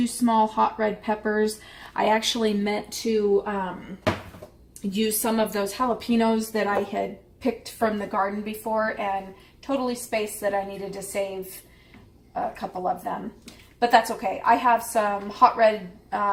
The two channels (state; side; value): identical; both; correlation 1.00